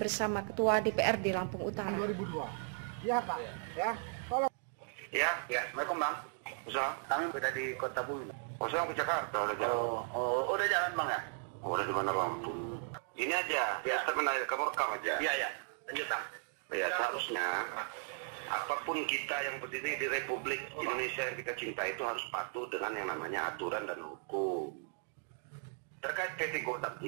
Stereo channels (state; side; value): silent; left; 53 dB below the other